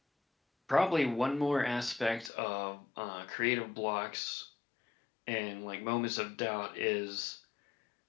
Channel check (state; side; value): drops out; right; at 2.3 s